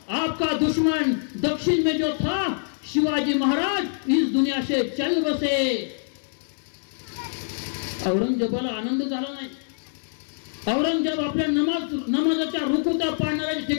आपका दुश्मन दक्षिण में जो था शिवाजी महाराज इस दुनिया से चल बसे. औरंगजेबाला आनंद झाला नाही. औरंगजेब आपल्या नमाजाच्या रुकुता पाडणाऱ्या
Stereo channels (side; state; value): right; silent; digital silence